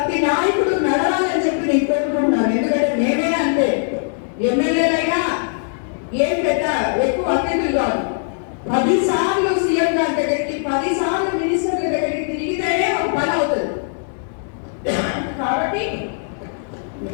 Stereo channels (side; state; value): right; silent; 66 dB below the other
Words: నాయకుడు నడవాలని చెప్పి నేను కోరుకుంటున్నాను. ఎందుకంటే నేనే అంతే, ఎమ్మెల్యేలైనా ఏం పెద్ద ఎక్కువ అతిథులు కాదు. 10 సార్లు సీఎం గారి దగ్గరికి, 10 సార్లు మినిస్టర్ల దగ్గరికి తిరిగితేనే ఒక పని అవుతుంది. కాబట్టి